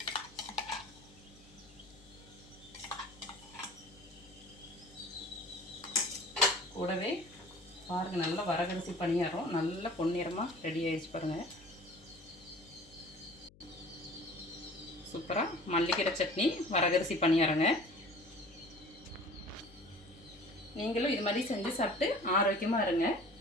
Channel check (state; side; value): noise; left; hum, 25 dB below the sound